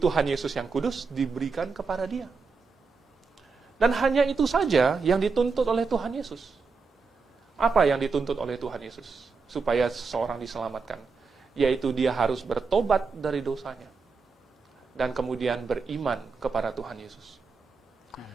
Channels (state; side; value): quieter; left; 4.7 dB